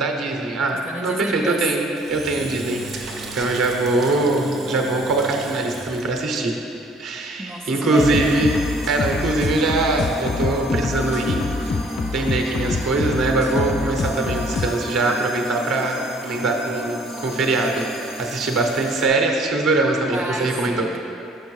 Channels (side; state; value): both; normal; correlation 0.56